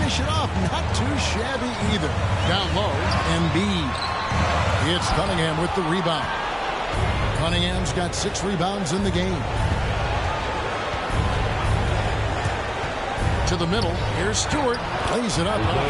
it off? Not too shabby either. Down low, Embiid. It's Cunningham with the rebound. Cunningham's got 6 rebounds in the game. To the middle, here's Stewart. Lays it up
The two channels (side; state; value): both; identical; correlation 1.00